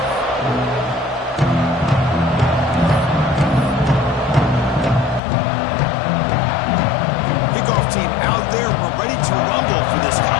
Team out there, we're ready to rumble for this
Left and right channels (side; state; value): right; drops out; at 5.2 s